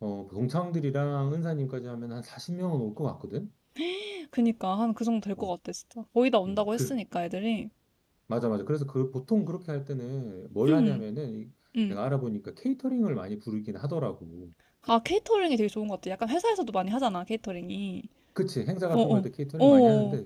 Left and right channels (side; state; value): both; identical; correlation 1.00